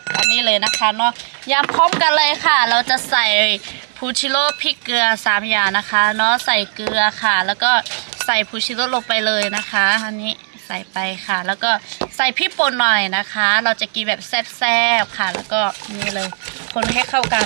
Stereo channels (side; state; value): left; silent; 68 dB below the other